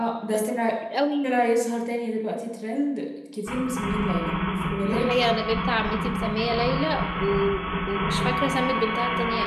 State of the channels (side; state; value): both; identical; correlation 1.00